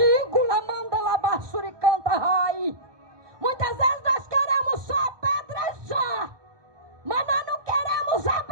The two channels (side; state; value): left; late; 1.2 ms